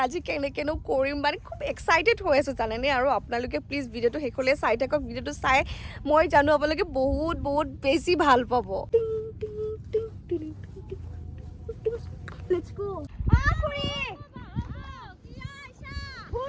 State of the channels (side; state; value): both; identical; correlation 1.00